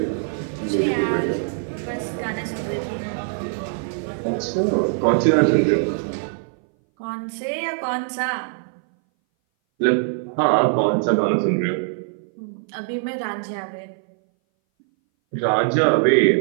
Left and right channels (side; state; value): left; silent; 60 dB below the other